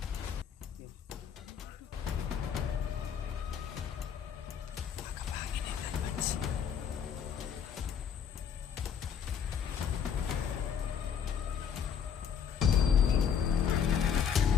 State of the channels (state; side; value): quieter; right; 7.7 dB